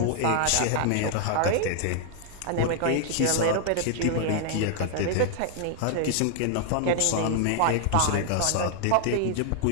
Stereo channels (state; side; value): different; both; correlation 0.00